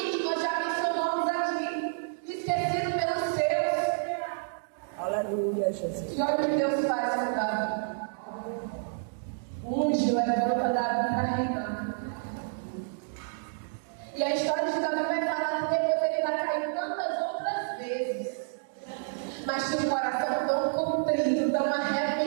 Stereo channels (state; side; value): silent; left; digital silence